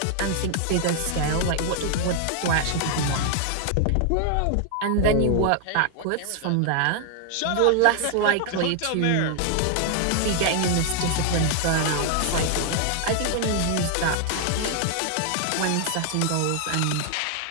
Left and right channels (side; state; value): both; different; correlation 0.00